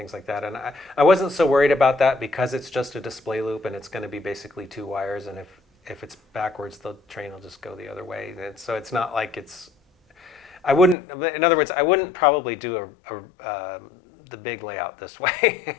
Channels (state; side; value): drops out; right; at 11.0 s